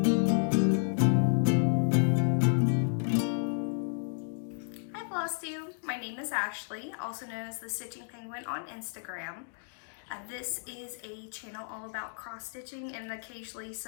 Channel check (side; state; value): right; silent; digital silence